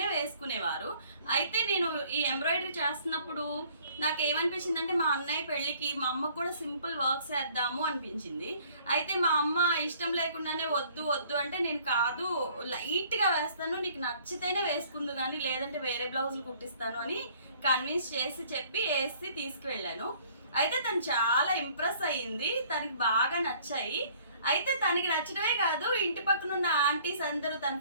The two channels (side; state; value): both; inverted; correlation -0.57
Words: వేసుకునేవారు. అయితే నేను ఈ ఎంబ్రాయిడరీ చేస్తున్నప్పుడు నాకు ఏమనిపించిందంటే మా అన్నయ్య పెళ్ళికి మా అమ్మకు కూడా సింపుల్ వర్క్స్ వేద్దాము అనిపించింది. అయితే మా అమ్మ ఇష్టం లేకుండానే వద్దు వద్దు అంటే నేను కాదు లైట్గా వేస్తాను, నీకు నచ్చితేనే వేసుకుందు కానీ లేదంటే వేరే బ్లౌజులు కుట్టిస్తాను అని కన్విన్స్ చేసి చెప్పి వేసి తీసుకువెళ్ళాను. అయితే తను చాలా ఇంప్రెస్ అయ్యింది, తనకి బాగా నచ్చాయి. అయితే తనకి నచ్చడమే కాదు, ఇంటి పక్కన ఉన్న ఆంటీస్ అందరూ, తన